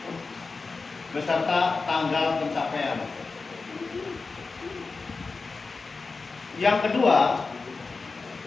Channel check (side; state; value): right; quieter; 4.2 dB